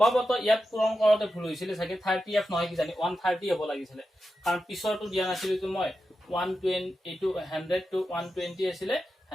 ইয়াত পূৰণ কৰোতে ভুল হৈছিল চাগে 30f নহয় কি জানি 130 হ'ব লাগিছিল কাৰণ পিছৰটো দিয়া নাছিল তো মই 120 এইটো 100 to 120 আছিল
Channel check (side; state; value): both; normal; correlation 0.90